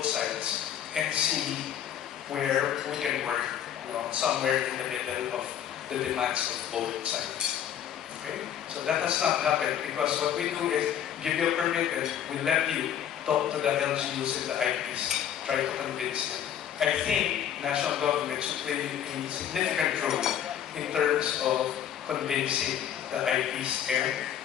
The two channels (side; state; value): right; quieter; 9.9 dB